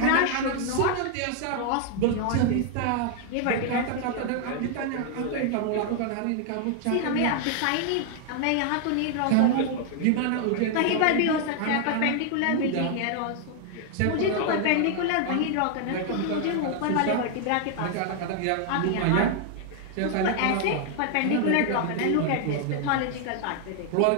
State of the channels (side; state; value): both; different; correlation 0.00